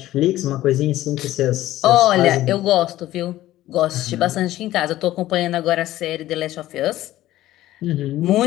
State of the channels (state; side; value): quieter; right; 14.9 dB